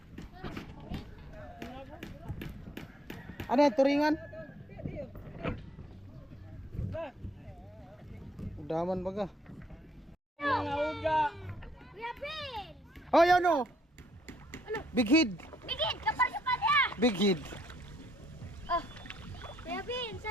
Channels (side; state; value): both; normal; correlation 0.68